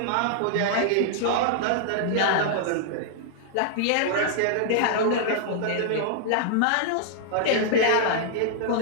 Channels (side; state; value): both; different; correlation -0.01